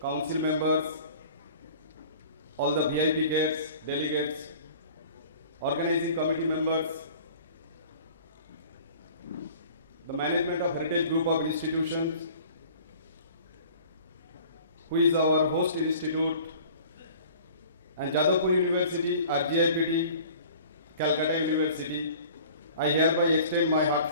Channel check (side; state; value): both; inverted; correlation -0.47